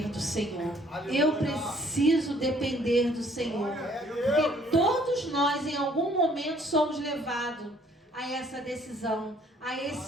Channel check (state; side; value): normal; both; correlation 0.61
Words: do Senhor. Eu preciso depender do Senhor, porque todos nós em algum momento somos levados a essa decisão, a